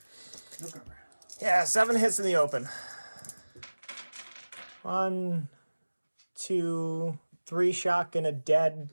No cover. Yeah, 7 hits in the open. 1, 2, 3 shock and a dead.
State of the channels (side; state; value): both; inverted; correlation -1.00